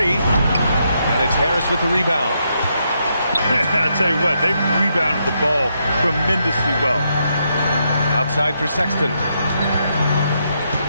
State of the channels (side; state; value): both; inverted; correlation -0.79